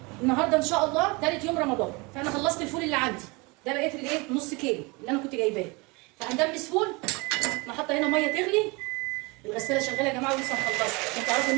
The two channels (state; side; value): quieter; left; 26.9 dB